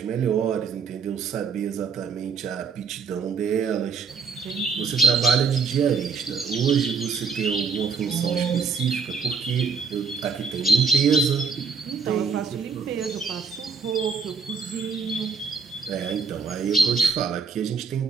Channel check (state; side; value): quieter; left; 5.3 dB